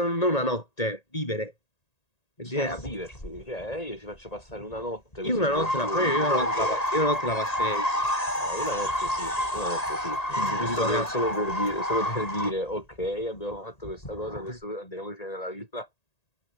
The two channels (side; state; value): right; late; 1.8 ms